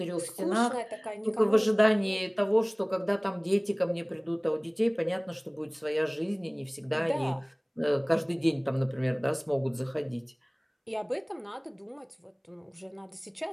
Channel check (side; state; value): both; identical; correlation 1.00